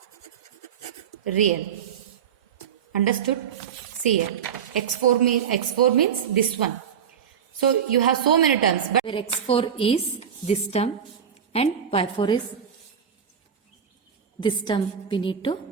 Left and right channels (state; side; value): quieter; left; 7.9 dB